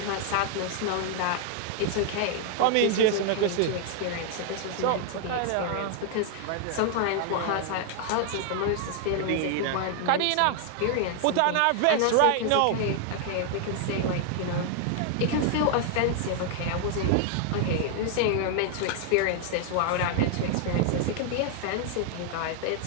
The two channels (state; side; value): different; both; correlation 0.00